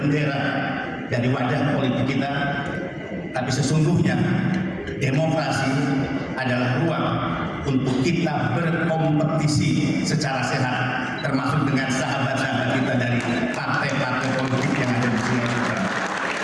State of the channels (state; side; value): identical; both; correlation 1.00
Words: dari wajah politik kita, tapi sesungguhnya demokrasi adalah ruang untuk kita berkompetisi secara sehat, termasuk dengan sahabat-sahabat kita dari partai-partai politik yang ada di Sulawesi Utara.